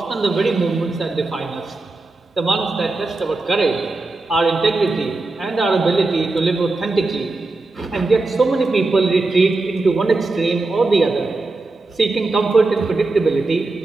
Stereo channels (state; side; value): quieter; left; 3.3 dB